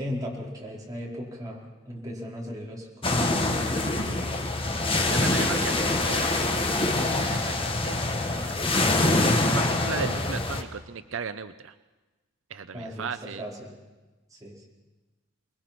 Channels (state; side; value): normal; both; correlation 0.42